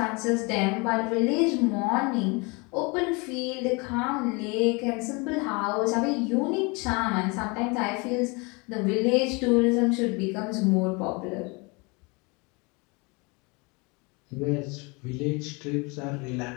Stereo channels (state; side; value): quieter; right; 28.9 dB